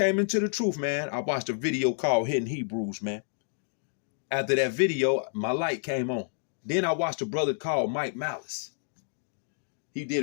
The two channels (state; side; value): silent; right; digital silence